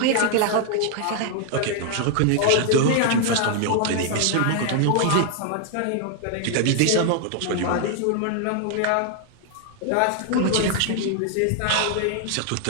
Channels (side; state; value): both; different; correlation 0.00